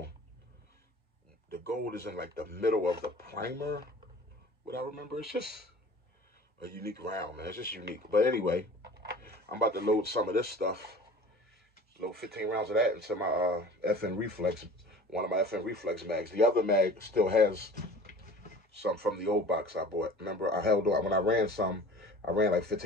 The gold is in like the middle of the primer. What I remember, it's just a unique round, man. It's just unique. But anyway, I'm about to load some of this stuff. Load 15 rounds of that into my FN Reflex, one of my FN Reflex mags. The other mag still has some from the old box I bought. Remember, I held on, when I ran like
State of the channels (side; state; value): both; normal; correlation 0.43